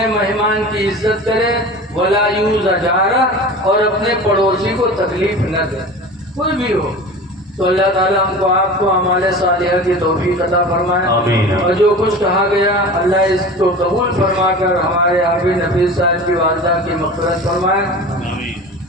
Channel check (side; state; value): both; normal; correlation 0.35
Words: مہمان کی عزت کرے، ولا یؤذ جارہ، اور اپنے پڑوسی کو تکلیف نہ دے، کوئی بھی ہو۔ تو اللہ تعالیٰ ہم کو آپ کو اعمال صالحہ کی توفیق عطا فرمائے، آمین۔ اور جو کچھ کہا گیا اللہ اس کو قبول فرما کر ہمارے حافظ نفیس صاحب کی والدہ کی مغفرت فرمائے۔